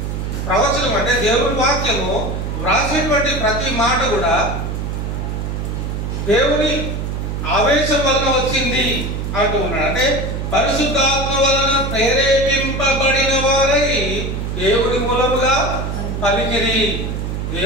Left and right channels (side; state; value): right; noise; hum, 3 dB below the sound